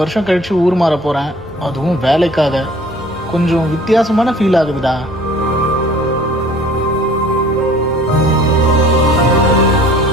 வருஷம் கழிச்சு ஊர் மாற போகிறேன், அதுவும் வேலைக்காக. கொஞ்சம் வித்தியாசமான ஃபீல் ஆகுதுடா.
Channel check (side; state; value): both; normal; correlation 0.51